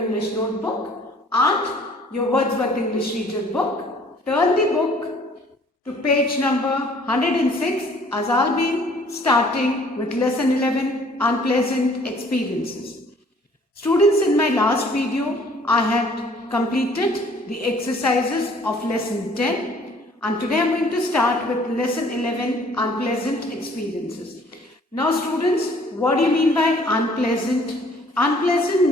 notebook and your Wordsworth English Reader book. Turn the book to page number 106 as I'll be starting with lesson 11, Unpleasant Experiences. Students, in my last video, I had completed the exercises of lesson 10 and today I'm going to start with lesson 11, Unpleasant Experiences. Now students, what do you mean by unpleasant? Unpleasant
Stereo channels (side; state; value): both; normal; correlation 0.57